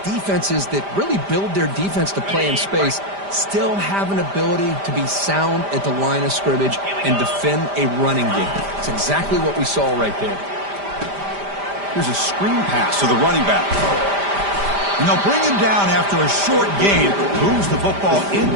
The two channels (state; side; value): late; left; 5.0 ms